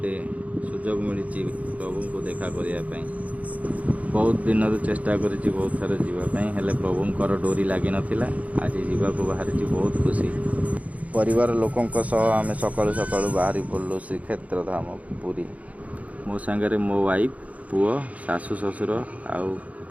सुजोग मिली प्रभु को देखा करने बहुत दिन चेष्टा करी बहुत थर जावाई हेले प्रभुंर डोरी लगी नाला आज जावाक बाहरी बहुत खुशी परिवार लोकों आम सकालू सकालू बाहरी पड़लु श्रीक्षेत्र धाम पुरी। मो सांगे मो वाइफ पुओ शाशु शशुर आउ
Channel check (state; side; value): late; left; 0.069 ms